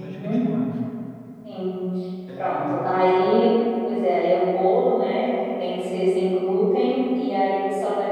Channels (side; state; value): both; identical; correlation 1.00